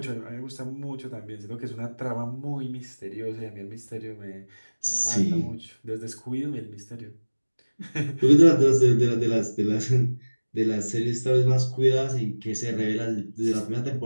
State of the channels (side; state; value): both; inverted; correlation -1.00